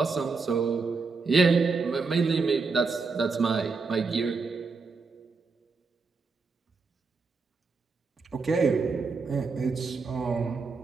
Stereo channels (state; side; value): quieter; left; 4.5 dB